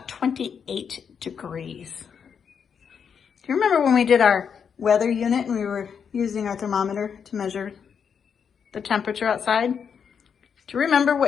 28 degrees. Do you remember when we did our weather unit and we were using our thermometer to measure the temperature outside? Do you remember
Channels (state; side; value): quieter; right; 7.0 dB